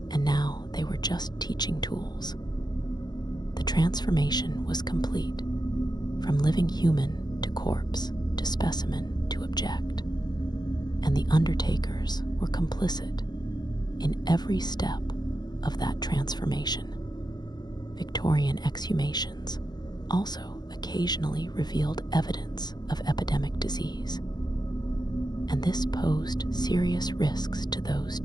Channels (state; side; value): late; right; 0.20 ms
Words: and now they were just teaching tools. The transformation was complete, from living human to corpse to specimen to object, and the undertakers were complicit in every step of that transformation. Victorian exhumations also occasionally revealed evidence of epidemic disease, and this posed serious risks to those